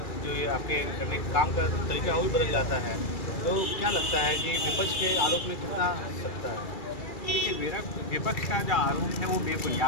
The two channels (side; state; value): right; late; 2.3 ms